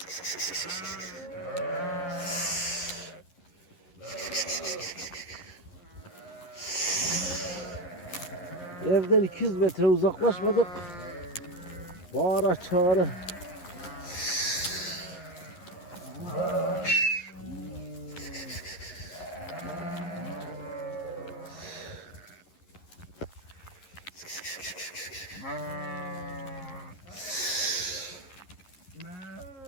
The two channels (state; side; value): late; right; 11 ms